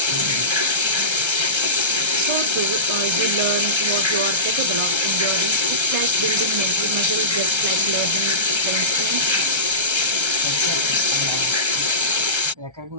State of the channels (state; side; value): late; left; 1.3 ms